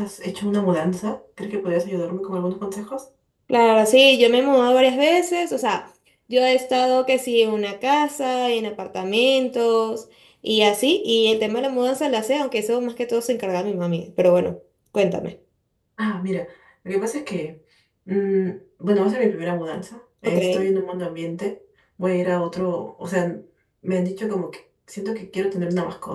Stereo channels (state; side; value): identical; both; correlation 1.00